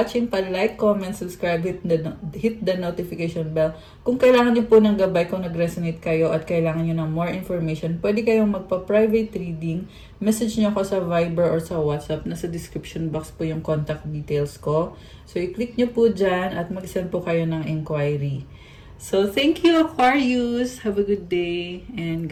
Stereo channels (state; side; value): identical; both; correlation 1.00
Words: Pa-like, comment, subscribe, hit the notification bell. Kung kailangan niyo po ng gabay, kung nag-resonate kayo at kailangan niyo ng more information, pwede kayong magpa-private reading. Message niyo ako sa Viber or sa WhatsApp. Nasa description box po yung contact details ko. So, i-click niyo po dyan at mag-send po kayo ng inquiry. So, thank you Aquarius. Have a good day and